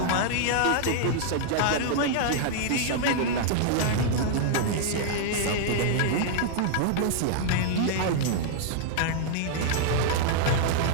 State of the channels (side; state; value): both; different; correlation -0.01